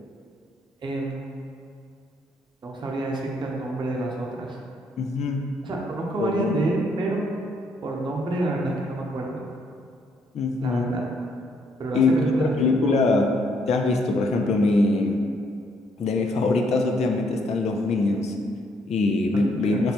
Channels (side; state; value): both; normal; correlation 0.70